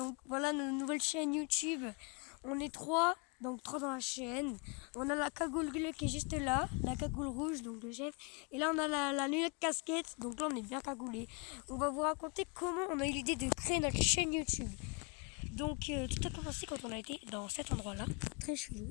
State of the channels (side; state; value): right; quieter; 32.1 dB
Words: voilà notre nouvelle chaîne YouTube. On est trois, donc trois dans la chaîne. On a la cagoule bleue qui est juste là, la cagoule rouge, donc le chef. Et là on a la lunette casquette, donc là on est bien cagoulé. On va vous raconter comment on a eu l'idée de créer notre chaîne YouTube. Donc tout a commencé quand on a été dans cet endroit-là, très